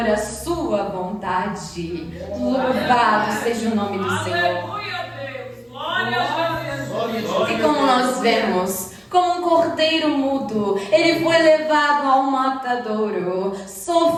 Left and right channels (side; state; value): both; identical; correlation 1.00